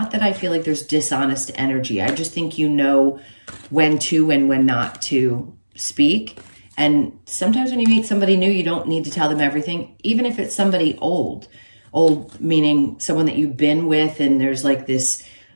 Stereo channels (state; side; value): inverted; both; correlation -1.00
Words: that I feel like there's dishonest energy. I just think you know when to and when not to speak. And sometimes when you meet somebody new, you don't need to tell them everything, even if it's somebody old meaning someone that you've been with and there's like this